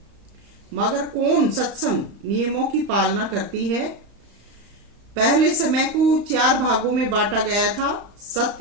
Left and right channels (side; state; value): left; late; 35 ms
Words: मगर कौन सत्संग नियमों की पालना करती है। पहले समय को 4 भागों में बांटा गया था,